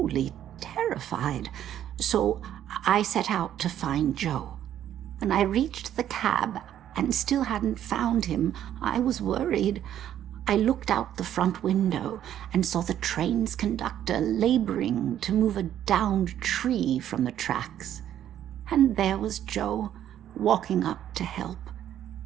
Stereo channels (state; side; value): quieter; left; 11.0 dB